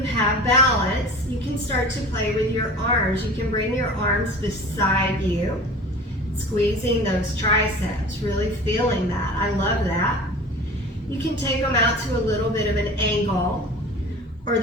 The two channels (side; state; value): both; normal; correlation 0.39